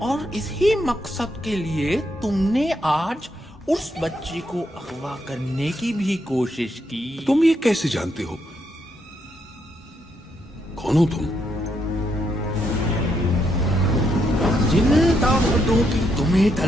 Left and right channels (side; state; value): both; normal; correlation 0.78